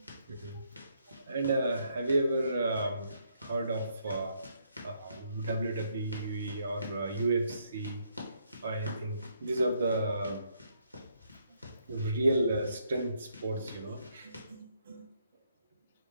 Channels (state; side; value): inverted; both; correlation -0.72